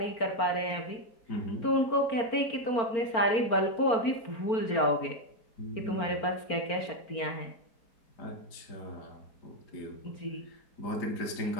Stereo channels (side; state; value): right; late; 4.4 ms